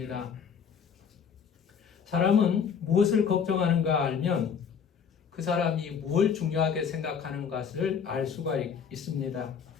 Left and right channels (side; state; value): right; quieter; 6.9 dB